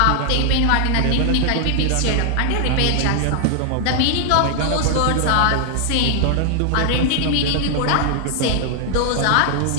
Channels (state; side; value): different; both; correlation 0.00